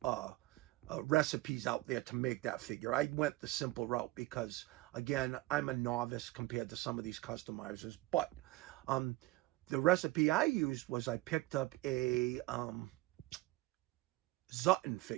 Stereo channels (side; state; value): left; quieter; 19.7 dB